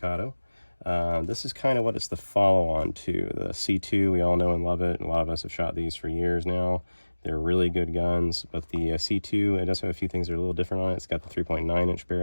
This is kind of what it's the follow-on to. The C2, we all know and love it. A lot of us have shot these for years now. They're really good guns, but the C2, it does have a few things that are a little different on it. It's got the 3.9-inch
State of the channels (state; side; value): inverted; both; correlation -1.00